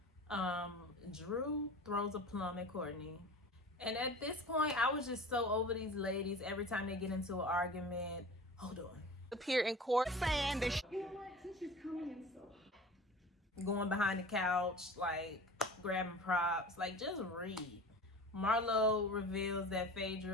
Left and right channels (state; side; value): normal; both; correlation 0.38